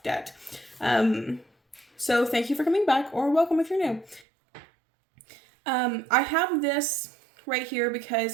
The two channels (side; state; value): left; drops out; at 4.2 s